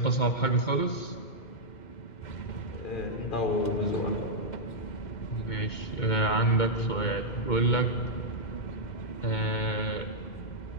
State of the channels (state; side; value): late; right; 2.2 ms